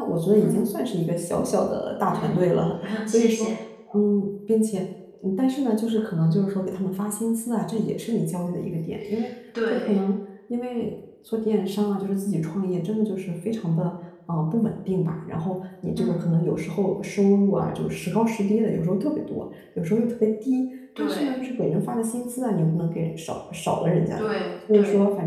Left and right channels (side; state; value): both; identical; correlation 1.00